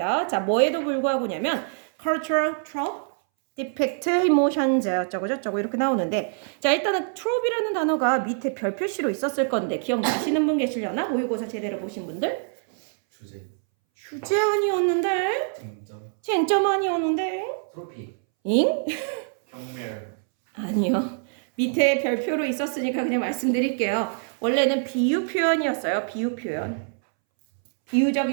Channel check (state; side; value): silent; left; 62 dB below the other